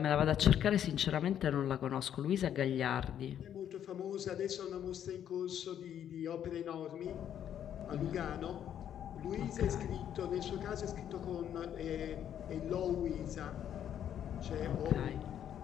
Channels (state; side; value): quieter; right; 9.9 dB